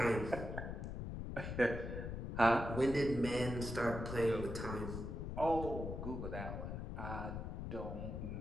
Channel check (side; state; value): left; noise; rumble, 5 dB below the sound